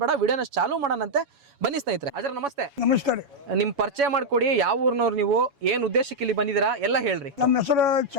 ಬೇಡ, ವಿಡಿಯೋನ ಚಾಲೂ ಮಾಡೋಣಂತೆ. ಬನ್ನಿ ಸ್ನೇಹಿತರೆ. ಅಜರ ನಮಸ್ತೆ. ನಮಸ್ಕಾರ. ನಿಮ್ಮ ಪರಿಚಯ ಮಾಡಿಕೊಡಿ, ಯಾವ ಊರಿನವ್ರು ನೀವು, ಏನು ಉದ್ದೇಶಕ್ಕೆ ಇಲ್ಲಿ ಬಂದಿದ್ದೀರಾ ಎಲ್ಲ ಹೇಳ್ರಿ. ನಮ್ಮ ಹೆಸರು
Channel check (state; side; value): late; left; 7.1 ms